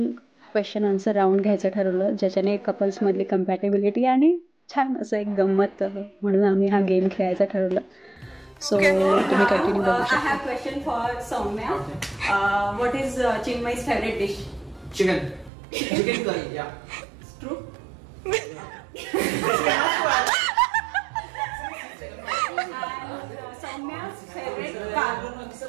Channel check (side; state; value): left; drops out; at 15.5 s